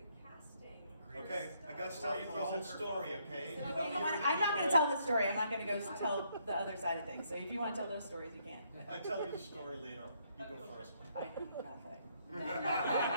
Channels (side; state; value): both; inverted; correlation -0.71